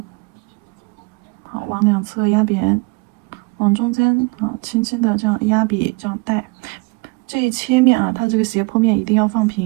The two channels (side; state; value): left; quieter; 27.9 dB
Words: 好，往两侧压扁，往中间轻轻的这样压笔，这样带。这一切面它这个斜坡面一定要放